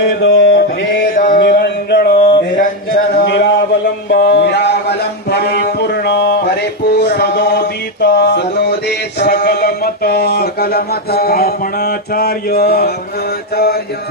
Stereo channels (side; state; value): both; normal; correlation 0.05